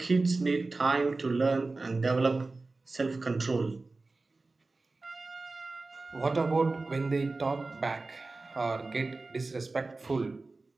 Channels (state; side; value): quieter; left; 3.5 dB